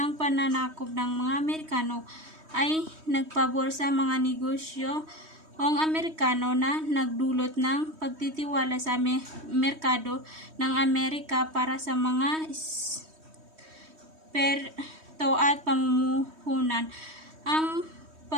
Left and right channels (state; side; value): late; left; 3.2 ms